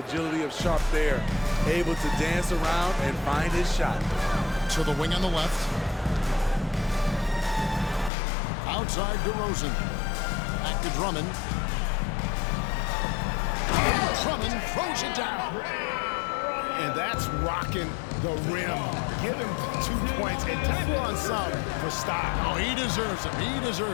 agility of Sharp there? Able to dance around and find his shot. To the wing on the left. Outside DeRozan. Back to Drummond. And Drummond throws it down. And that's rocking the rim. Give him 2 points and tackle on some for style. Oh, he deserves them. He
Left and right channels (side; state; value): right; drops out; at 8.1 s